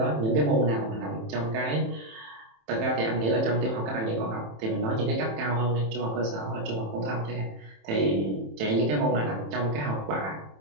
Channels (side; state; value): left; late; 27 ms